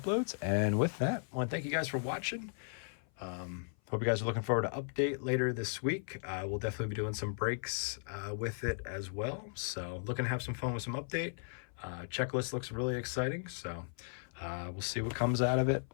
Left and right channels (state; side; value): silent; right; 54 dB below the other